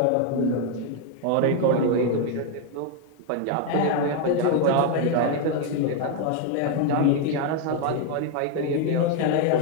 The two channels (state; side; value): different; both; correlation 0.01